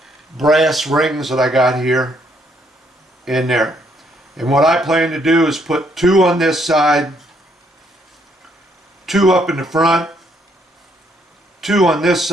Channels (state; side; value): normal; both; correlation 0.70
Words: brass rings that I got here in there. And what I plan to do is put 2 on this side, 2 up in the front, 2 on this